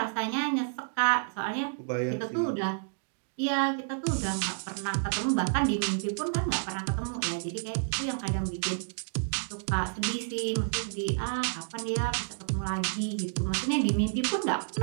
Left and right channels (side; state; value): left; silent; digital silence